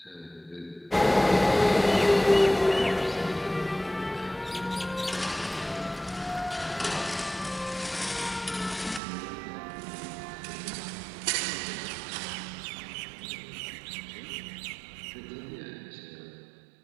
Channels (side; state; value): left; drops out; at 9.0 s